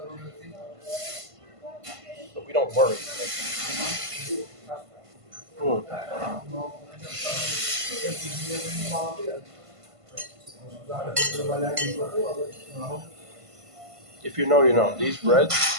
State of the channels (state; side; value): late; left; 1.5 ms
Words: But we don't worry. If you know, you know. These breads,